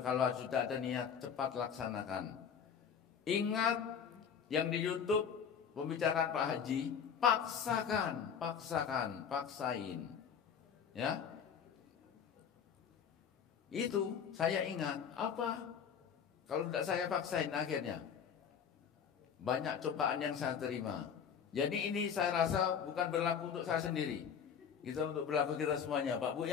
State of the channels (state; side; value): quieter; right; 7.4 dB